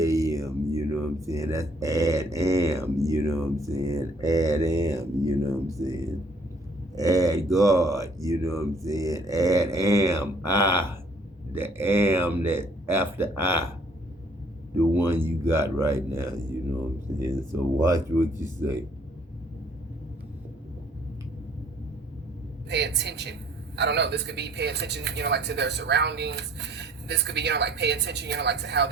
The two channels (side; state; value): both; normal; correlation 0.60